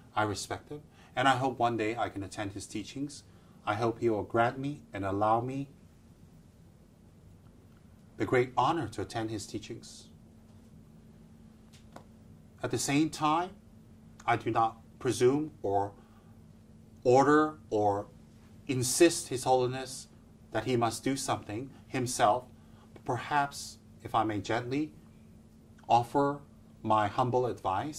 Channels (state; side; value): identical; both; correlation 1.00